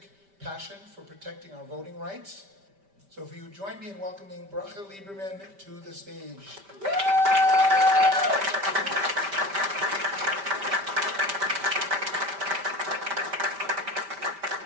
passion for protecting our voting rights. So if you join me in welcoming Bracha Lieberman to the stage.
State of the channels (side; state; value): left; late; 5.1 ms